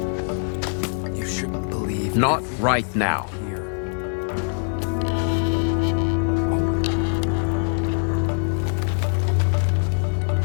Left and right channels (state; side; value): silent; right; 62 dB below the other